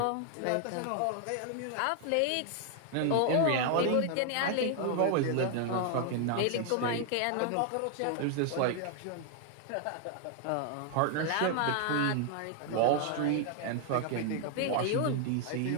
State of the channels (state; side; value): different; both; correlation 0.00